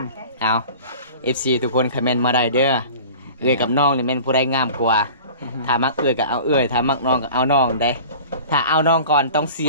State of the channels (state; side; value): inverted; both; correlation -0.41